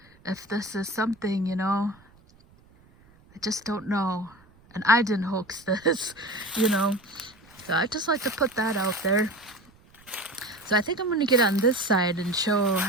something, you know, I just don't know. And I didn't hoax this, you know. So I just like to put that out there. So I think I'm going to get on this side and show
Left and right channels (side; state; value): right; noise; rumble, 29 dB below the sound